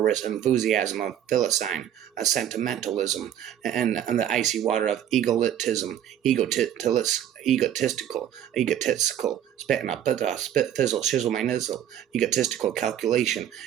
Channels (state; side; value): quieter; left; 10.4 dB